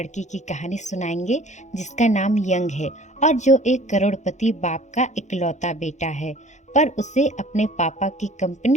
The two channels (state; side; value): late; right; 0.34 ms